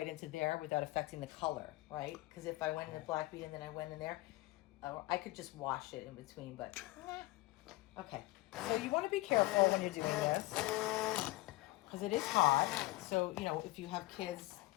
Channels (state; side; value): quieter; right; 19.8 dB